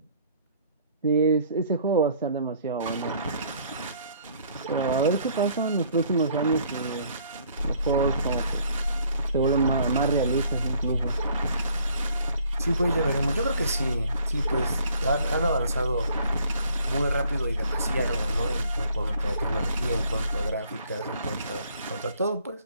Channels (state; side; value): inverted; both; correlation -0.60